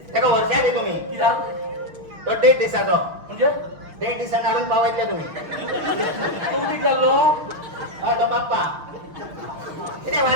ताका वर्षा दी तुमी कित्याक तो 1.5 दिसाचो म्हणजे 1.5 दिसान हाडून पावयतले तुमी तूं कितें जाल्लो हय तो बाप्पा कितें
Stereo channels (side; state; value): left; late; 6.4 ms